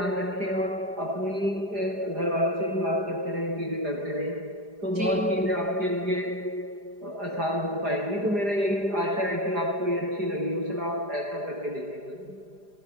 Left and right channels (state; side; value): late; left; 4.9 ms